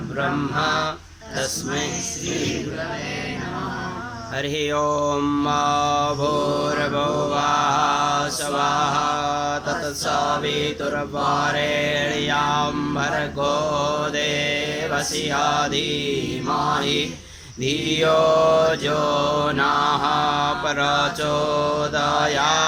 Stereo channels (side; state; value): both; identical; correlation 1.00